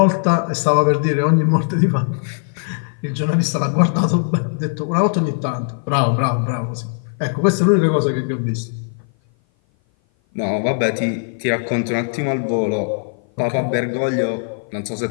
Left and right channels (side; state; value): right; silent; 57 dB below the other